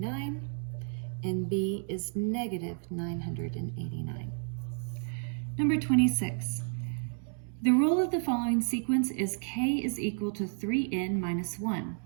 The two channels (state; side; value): silent; left; 56 dB below the other